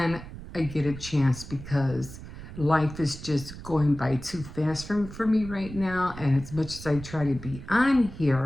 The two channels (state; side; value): noise; right; rumble, 13 dB below the sound